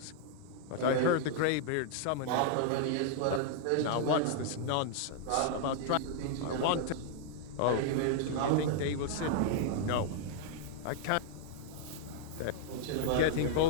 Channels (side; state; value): both; different; correlation -0.01